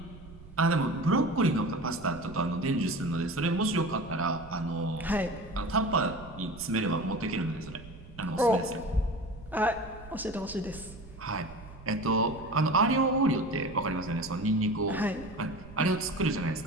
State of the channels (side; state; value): right; noise; rumble, 18 dB below the sound